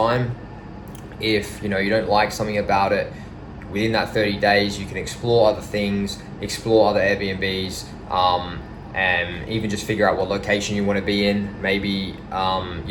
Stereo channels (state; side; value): identical; both; correlation 1.00